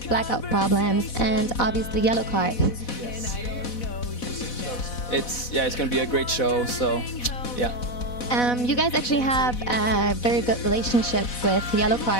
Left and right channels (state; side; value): late; right; 4.1 ms